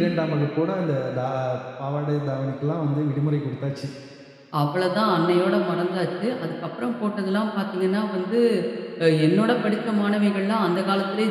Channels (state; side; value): identical; both; correlation 1.00